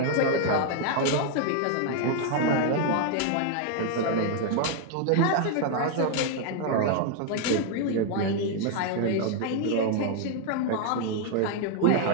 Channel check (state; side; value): different; both; correlation 0.00